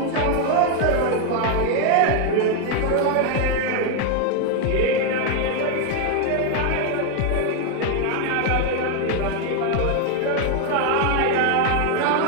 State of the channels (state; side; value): different; both; correlation 0.01